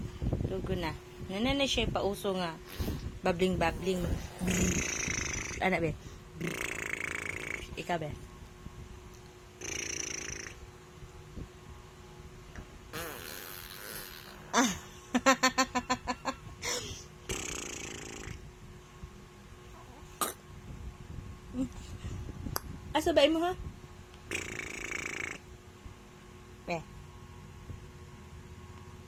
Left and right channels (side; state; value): both; identical; correlation 1.00